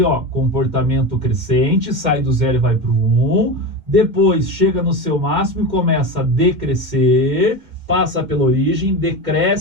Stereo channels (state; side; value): late; left; 2.1 ms